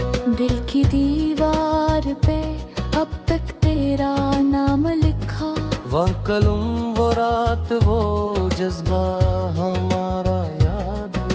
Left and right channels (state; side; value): identical; both; correlation 1.00